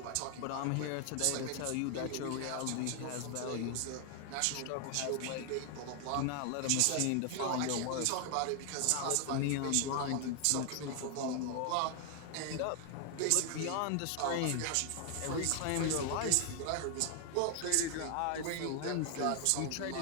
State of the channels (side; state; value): both; different; correlation 0.00